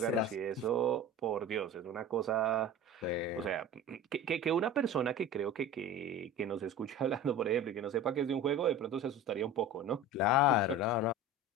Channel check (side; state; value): both; normal; correlation 0.34